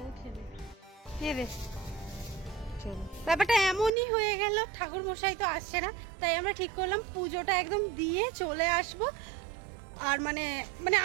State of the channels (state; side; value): drops out; left; at 3.9 s